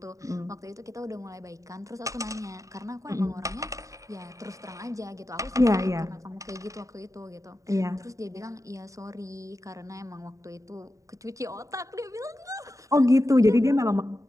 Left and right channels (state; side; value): late; left; 0.16 ms